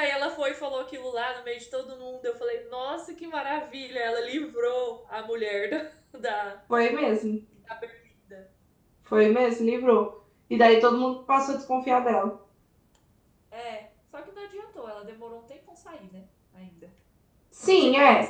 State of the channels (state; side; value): identical; both; correlation 1.00